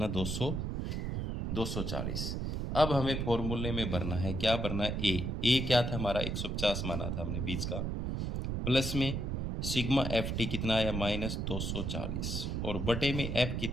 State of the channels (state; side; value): noise; right; rumble, 2 dB below the sound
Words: 240। अब हमें फॉर्मूले में भरना है, क्या भरना है? ए क्या था हमारा? 150 माना था हमने बीच का, प्लस में सिग्मा एफ टी कितना आया? माइनस 240 और बटे में एफ